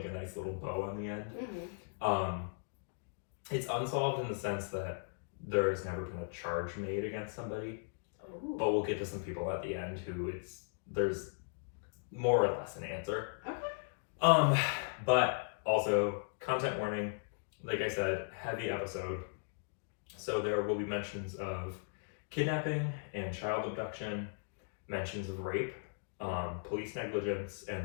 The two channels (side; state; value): right; silent; digital silence